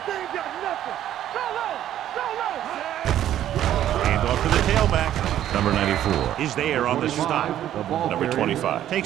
They ain't got nothing. Go low. Go low. Hand off to the tailback. Number 94 is there on the stop. Number 25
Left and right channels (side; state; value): left; quieter; 11.7 dB